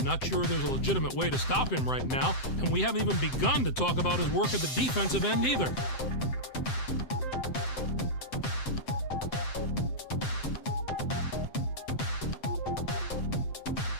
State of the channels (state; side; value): late; right; 7.7 ms